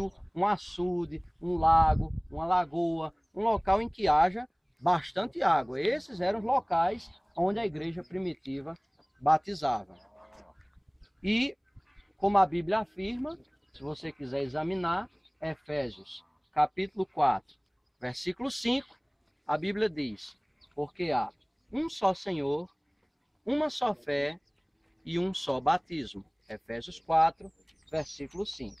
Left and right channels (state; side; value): identical; both; correlation 1.00